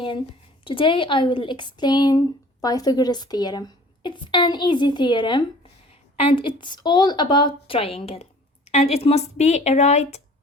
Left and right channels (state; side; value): normal; both; correlation 0.49